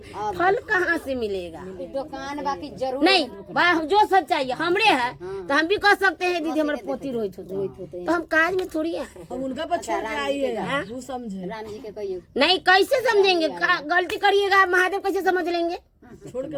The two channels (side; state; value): both; identical; correlation 1.00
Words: फल कहाँ से मिलेगा? दुकान बाकी जरूर नहीं, जो सब चाहिए हमरे है तो हम भी कह सकते हैं दीदी हमारे पोती रोहित होते, तो हम काज में थोड़ी है। उनका बच्चा आइएगा वो समझे राम जी के कहिए नहीं, कैसे समझेंगे? गलती करिएगा महादेव कैसे समझ लेंगे?